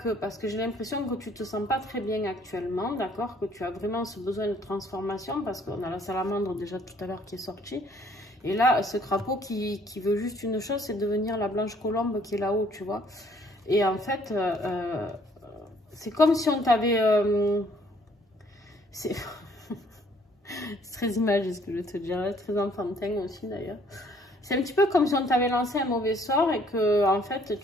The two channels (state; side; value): normal; both; correlation 0.62